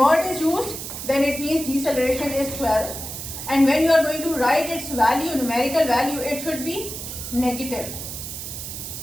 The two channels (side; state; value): right; noise; hiss, 8 dB below the sound